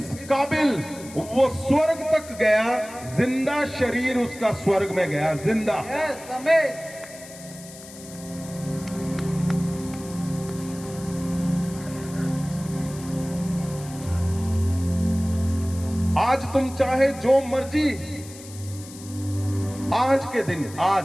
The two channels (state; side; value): noise; left; hiss, 17 dB below the sound